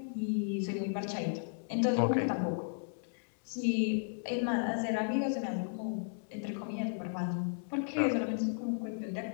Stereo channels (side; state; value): right; silent; digital silence